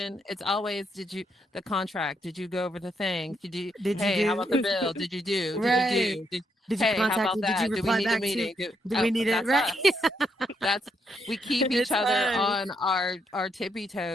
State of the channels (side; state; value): both; normal; correlation 0.77